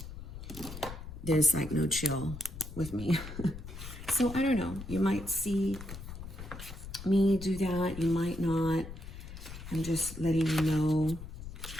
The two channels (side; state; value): left; noise; rumble, 11 dB below the sound